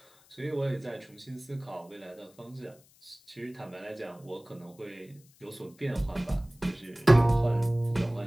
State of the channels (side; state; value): left; noise; hiss, 28 dB below the sound